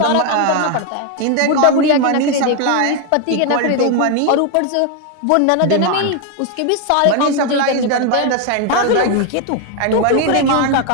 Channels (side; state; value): both; different; correlation 0.01